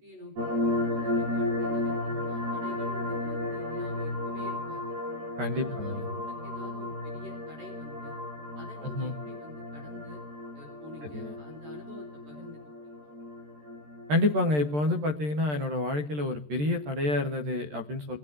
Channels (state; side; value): late; left; 13 ms